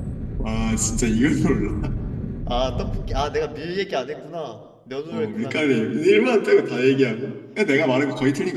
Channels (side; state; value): both; identical; correlation 1.00